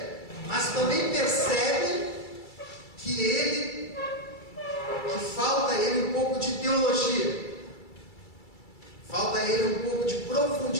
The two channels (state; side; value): late; right; 2.3 ms